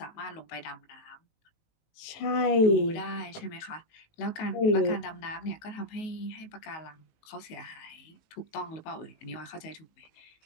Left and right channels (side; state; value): right; late; 19 ms